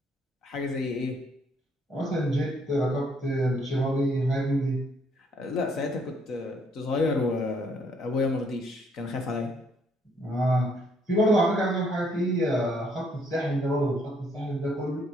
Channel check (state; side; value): normal; both; correlation 0.68